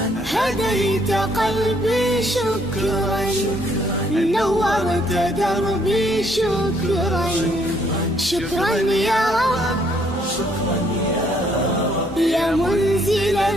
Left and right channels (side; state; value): both; normal; correlation 0.67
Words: هديت قلبي شكرا، نورت دربي شكرا. شكرا يا رب، شكرا يا منزل